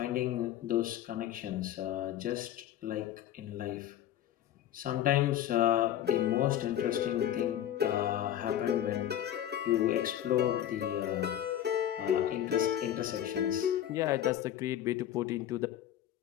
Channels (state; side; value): quieter; right; 11.4 dB